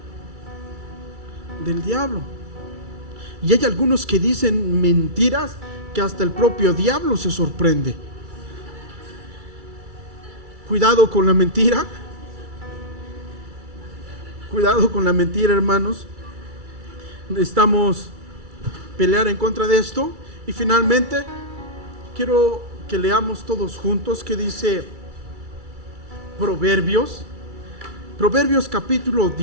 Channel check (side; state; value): left; late; 2.3 ms